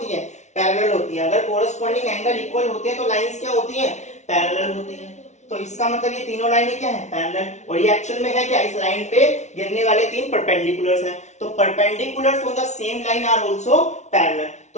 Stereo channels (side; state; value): right; late; 0.33 ms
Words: है, पैरेलल होती है। अगर कॉरस्पॉन्डिंग एंगल इक्वल होते हैं तो लाइंस क्या होती है, पैरेलल होती है। तो इसका मतलब ये तीनों लाइनें क्या है, पैरेलल। और ये एक्चुअल में है क्या, इस लाइन पे गिरने वाले 3 परपेंडिकुलर्स हैं। तो perpendiculars on the same line are also parallel.